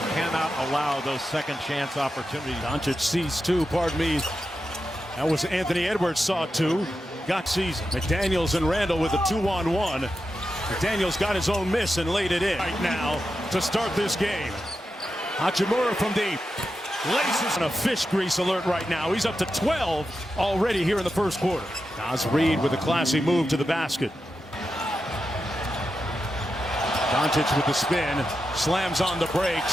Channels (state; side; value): normal; both; correlation 0.89